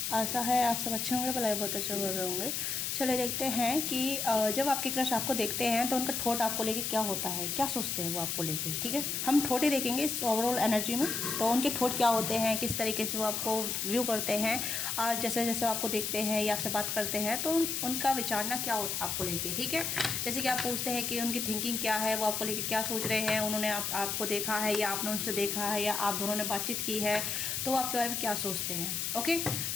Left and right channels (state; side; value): noise; left; hiss, 1 dB below the sound